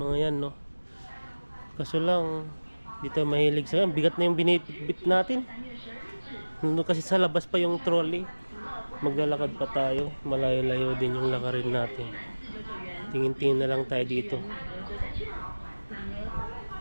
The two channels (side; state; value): both; inverted; correlation -1.00